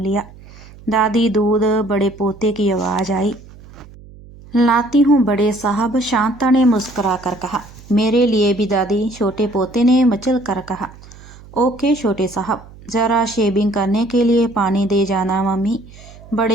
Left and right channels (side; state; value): right; noise; hum, 20 dB below the sound